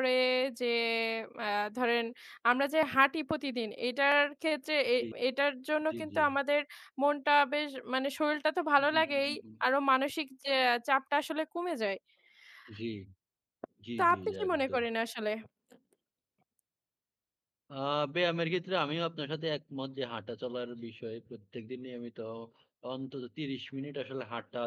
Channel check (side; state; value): both; identical; correlation 1.00